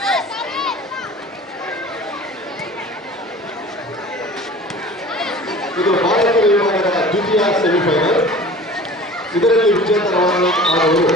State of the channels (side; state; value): both; normal; correlation 0.42